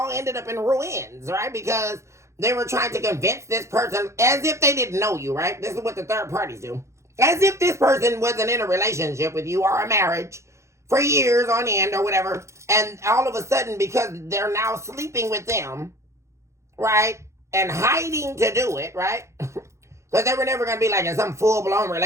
ended up in ruins, right? Because they were trying to convince this person as if they didn't know you, right? This is what the third parties do. As if this person wasn't in a relationship with you or a marriage for years on end or whatever. And all of a sudden, because they're now sleeping with them, right? And hiding to do it, right? Because they were never going to be like in some full-blown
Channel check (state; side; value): late; left; 0.14 ms